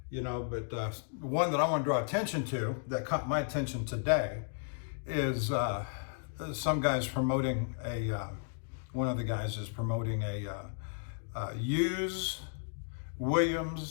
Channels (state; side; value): silent; right; digital silence